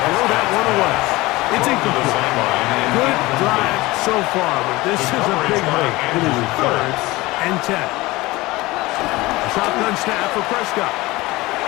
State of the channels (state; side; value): quieter; right; 20.4 dB